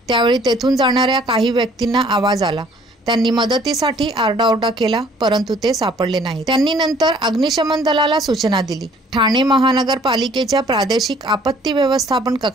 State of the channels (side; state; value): both; normal; correlation 0.57